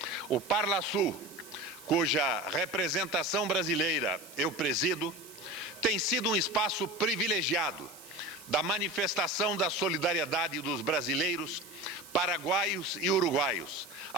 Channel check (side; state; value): right; noise; hiss, 18 dB below the sound